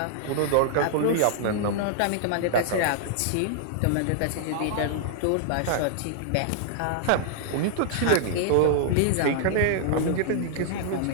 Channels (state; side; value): different; both; correlation -0.01